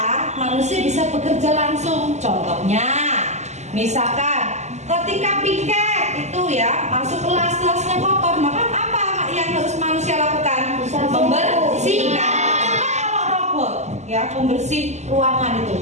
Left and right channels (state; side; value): late; left; 0.33 ms